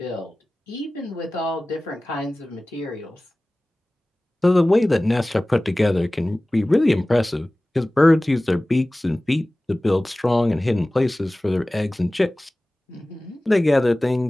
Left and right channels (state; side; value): normal; both; correlation 0.98